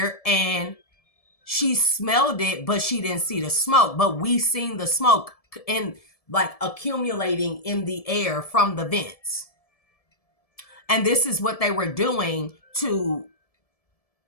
and she smelled it, but she didn't see the smoke. But we seen the smoke in like accumulating in the air from the vents. And this is what they were doing to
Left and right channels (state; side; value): late; right; 1.7 ms